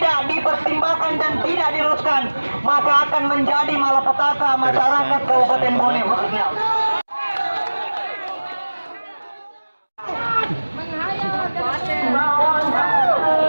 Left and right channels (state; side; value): inverted; both; correlation -1.00